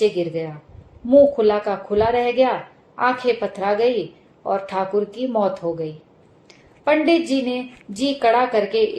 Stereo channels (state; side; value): identical; both; correlation 1.00